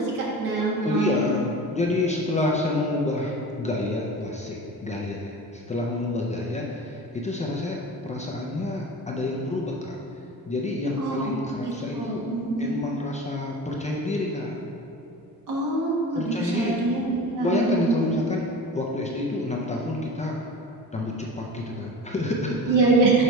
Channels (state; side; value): normal; both; correlation 0.34